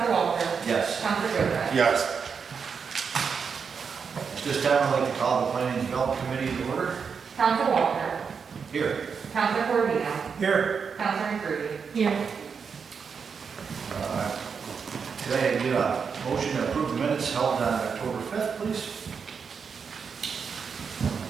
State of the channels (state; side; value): quieter; left; 6.0 dB